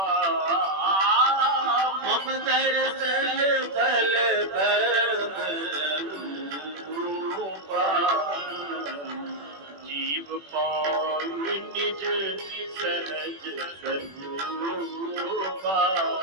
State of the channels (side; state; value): left; late; 21 ms